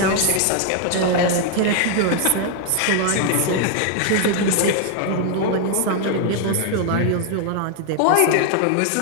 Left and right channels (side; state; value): both; different; correlation 0.00